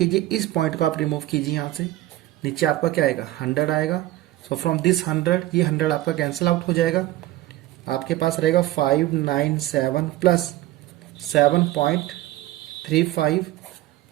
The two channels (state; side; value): quieter; left; 16.0 dB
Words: इस पॉइंट को आप रिमूव कीजिए यहाँ से, नीचे आपका क्या आएगा, 100 आएगा। सो फ्रॉम दिस 100, ये 100 आपका कैंसिल आउट हो जाएगा। आपके पास रहेगा 597 प्लस 7.35